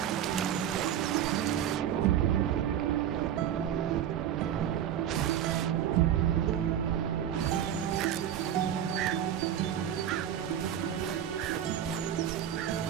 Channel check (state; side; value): quieter; left; 10.1 dB